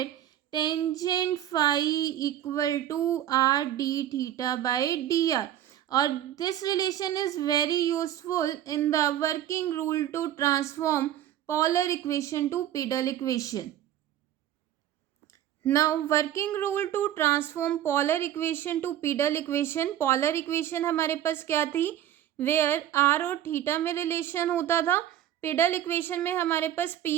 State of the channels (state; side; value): quieter; left; 11.7 dB